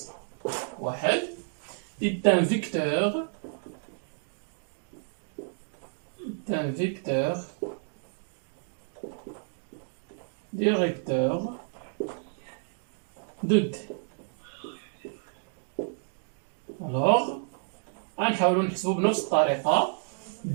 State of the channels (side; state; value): left; silent; digital silence